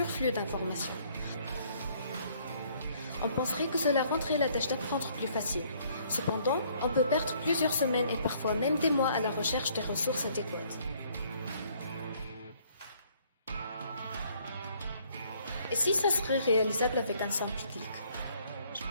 d'informations. On penserait que cela rendrait la tâche d'apprendre plus facile. Cependant, on peut perdre plusieurs semaines et parfois même des mois à la recherche des ressources adéquates. Et si ça serait réalisable avec un simple clic?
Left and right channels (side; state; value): both; inverted; correlation -0.63